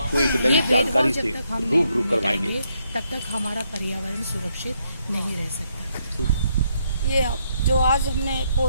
एक नई जानकारी से रूबरू करवाएंगे, तब तक हमारा पर्यावरण सुरक्षित नहीं रह सकता। ये जो आज हमने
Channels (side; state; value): both; inverted; correlation -0.75